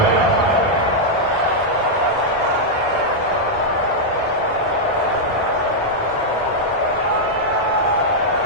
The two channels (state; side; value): normal; both; correlation -0.04